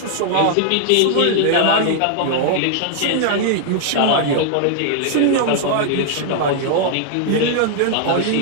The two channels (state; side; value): different; both; correlation -0.01